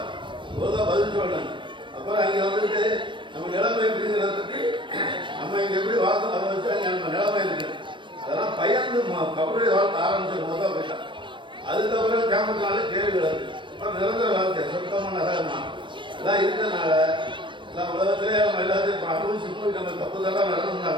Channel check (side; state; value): left; late; 0.24 ms